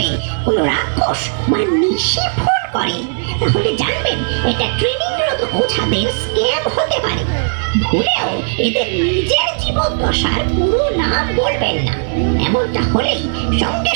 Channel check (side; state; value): left; silent; digital silence